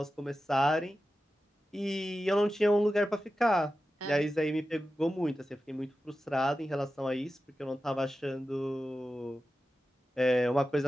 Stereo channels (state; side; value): normal; both; correlation 0.93